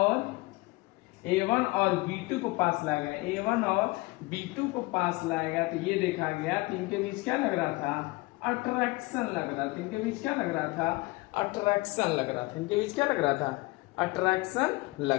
और B2 को पास लाया गया, A1 और B2 को पास लाया गया, तो ये देखा गया तो इनके बीच क्या लग रहा था, अट्रैक्शन लग रहा था। इनके बीच क्या लग रहा था, अट्रैक्शन लग रहा था। इनके बीच क्या लग रहा था, अट्रैक्शन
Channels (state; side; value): quieter; right; 22.9 dB